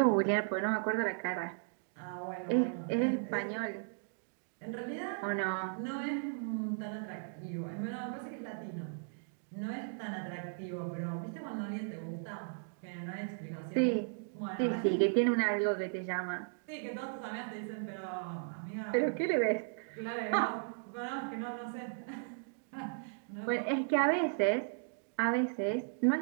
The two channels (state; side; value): silent; left; digital silence